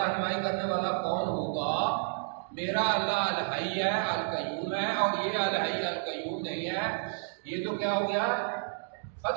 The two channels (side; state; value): left; silent; digital silence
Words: کرنے والا کون ہوگا، میرا اللہ الحی ہے القیوم ہے، اور یہ الحی القیوم نہیں ہے، یہ تو کیا ہو گیا،